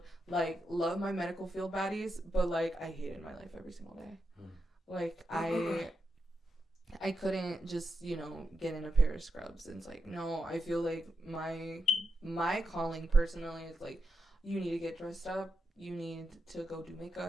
like, love my medical field baddies, but like I hated my life every single day. Like, I couldn't just, get in a pair of scrubs. And it's like, no, I feel like my calling personally is like, you need to get dressed up. You need to go do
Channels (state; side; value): normal; both; correlation 0.86